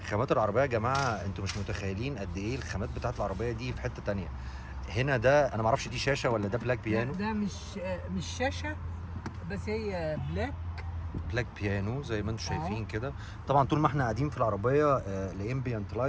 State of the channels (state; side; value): identical; both; correlation 1.00